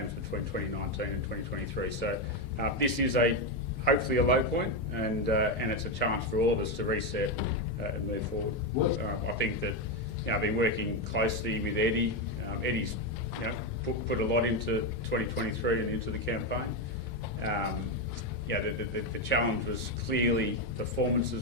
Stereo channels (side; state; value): left; late; 4.0 ms